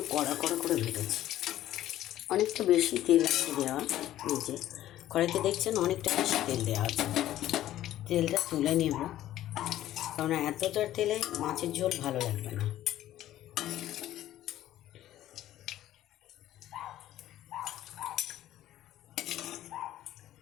কড়া কড়া করে ভেজেছি। অনেকটা বেশি তেল আছে দেওয়া। এই যে কড়াইতে দেখছেন অনেকটা বেশি তেল দেওয়া আছে। তেলটা তুলে নেব, কারণ এতটার তেলে মাছের ঝোল ভালো লাগবে না।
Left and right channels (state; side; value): quieter; right; 13.3 dB